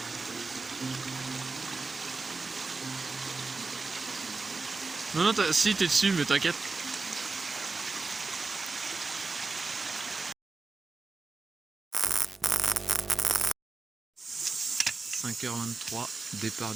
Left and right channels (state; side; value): quieter; left; 3.9 dB